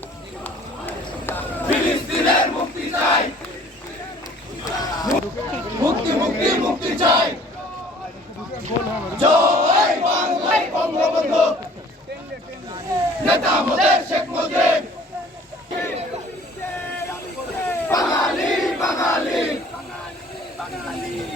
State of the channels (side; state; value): both; normal; correlation 0.53